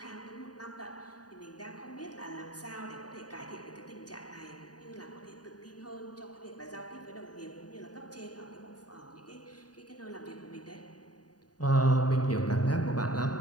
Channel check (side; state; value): right; late; 0.68 ms